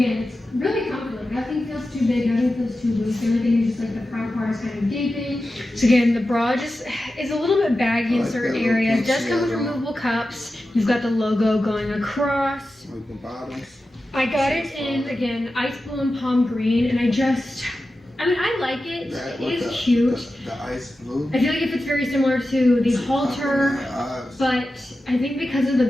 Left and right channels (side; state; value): both; normal; correlation 0.93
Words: it's really comfortable. Nothing feels too big, nothing feels too loose. The only thing is just like the front part is kind of gaping. So again, the bra just is a little bit baggy in certain areas. It does come with removable cups. You've got the logo going across. Like the bottoms. I got it in, again, ice blue and palm green, and I mean, I like it. It is cute. The ice blue. I feel like if it's very similar to the halter, but I think because of the